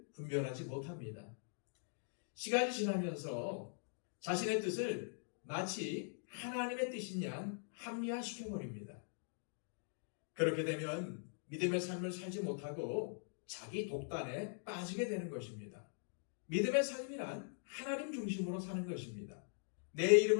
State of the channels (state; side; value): silent; right; digital silence